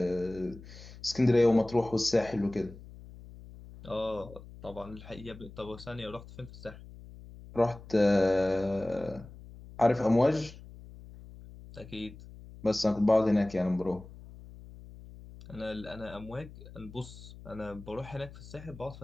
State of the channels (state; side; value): noise; left; hum, 17 dB below the sound